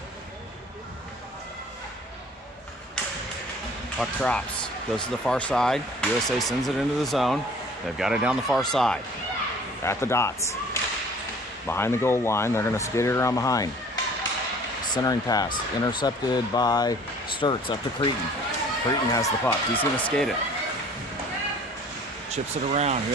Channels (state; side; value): normal; both; correlation 0.51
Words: Puck drops, goes to the far side. USA sends it into the zone. They've got it down the far side. At the dots. Behind the goal line, they're going to skate it around behind. Centering pass, intercepted by Sturts up to Cretin. Cretin has the puck. He's going to skate it. Chips it around.